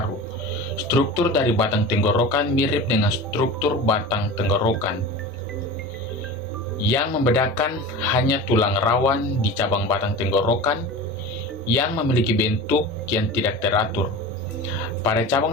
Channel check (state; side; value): normal; both; correlation 0.33